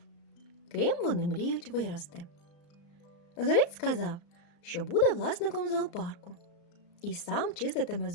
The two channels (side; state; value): right; late; 35 ms